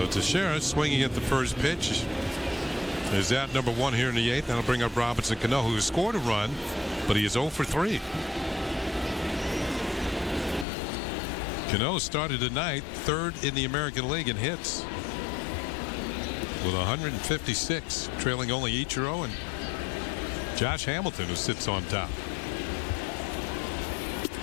Teixeira swinging at the first pitch. Is out number 1 here in the 8th. That'll bring up Robinson Cano, who has scored a run, but he is 0 for 3. Cano started tonight 3rd in the American League in hits with 156, trailing only Ichiro and Josh Hamilton, who sits on top.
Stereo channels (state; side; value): drops out; right; at 10.7 s